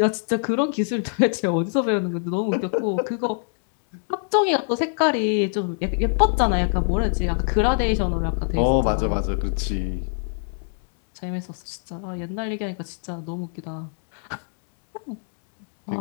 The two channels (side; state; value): right; silent; 62 dB below the other